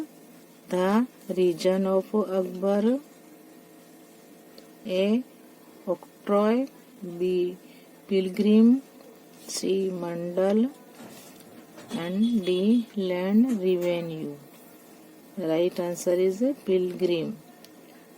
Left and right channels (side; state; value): both; identical; correlation 1.00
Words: the reign of Akbar? A octroi, B pilgrim, C mandal and D land revenue. Right answer is pilgrim.